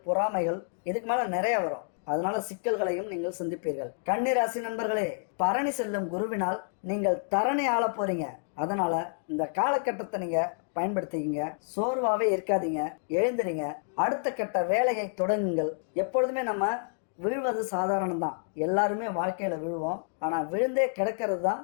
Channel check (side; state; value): right; silent; digital silence